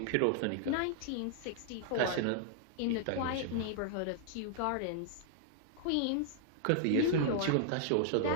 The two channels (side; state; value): both; different; correlation -0.01